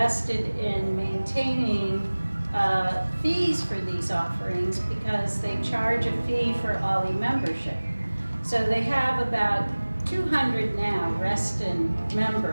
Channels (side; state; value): both; inverted; correlation -1.00